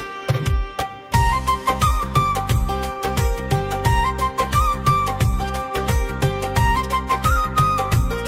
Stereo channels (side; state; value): both; identical; correlation 1.00